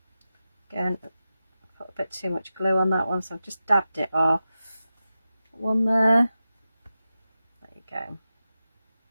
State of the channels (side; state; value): both; inverted; correlation -0.91